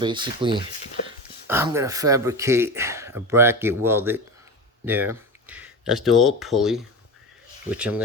I'm going to fabricate a bracket welded there. That's the old pulley, which I'm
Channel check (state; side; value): normal; both; correlation 0.24